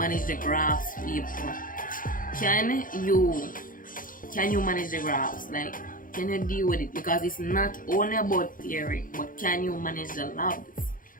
the graphs, people? Can you manage the graphs? Like, can you deal with it? Because it's not only about theory, but can you manage the labs?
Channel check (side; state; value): right; late; 0.40 ms